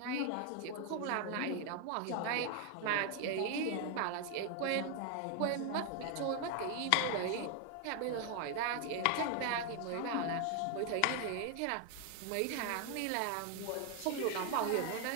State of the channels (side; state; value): both; different; correlation 0.00